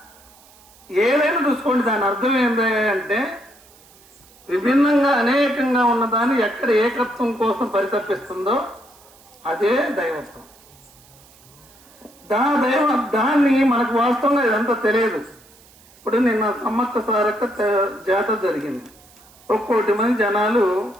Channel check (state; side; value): noise; right; hiss, 26 dB below the sound